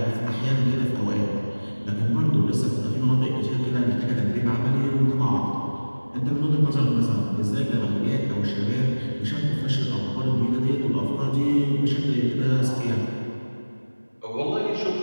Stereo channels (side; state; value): both; inverted; correlation -1.00